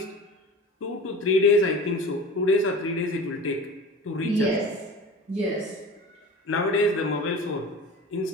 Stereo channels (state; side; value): normal; both; correlation 0.36